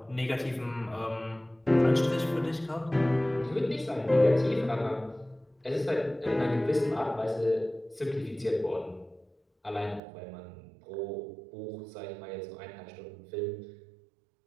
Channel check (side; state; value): left; drops out; at 10.0 s